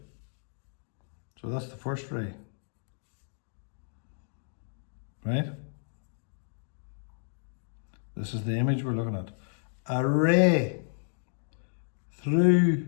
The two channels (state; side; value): silent; right; digital silence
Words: So that's the first ray. Right? This is the image we're looking at. A ray